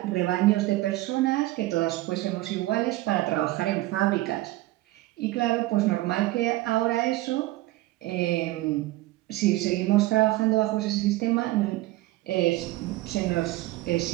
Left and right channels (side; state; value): left; quieter; 17.8 dB